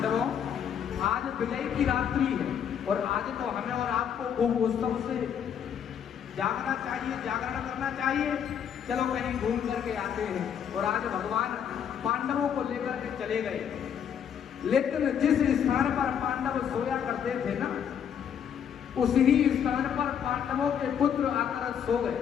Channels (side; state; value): right; quieter; 8.4 dB